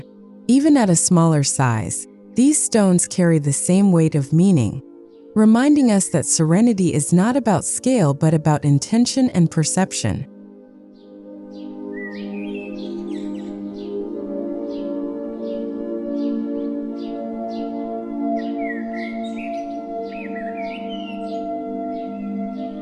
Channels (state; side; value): identical; both; correlation 1.00